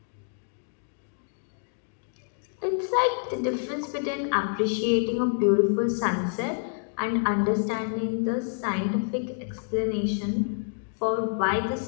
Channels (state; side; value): silent; right; digital silence